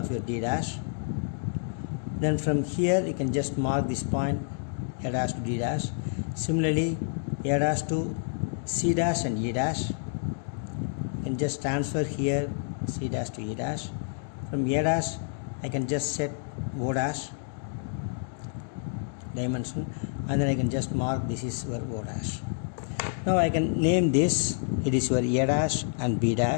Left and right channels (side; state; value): right; silent; digital silence